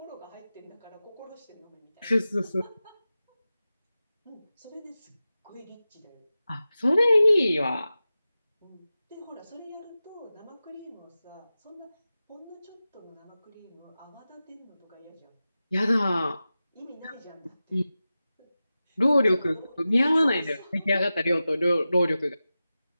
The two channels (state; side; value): inverted; both; correlation -0.94